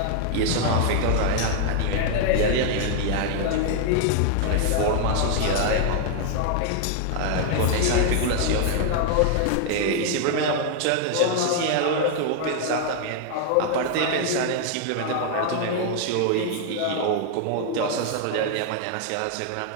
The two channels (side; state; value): both; different; correlation 0.00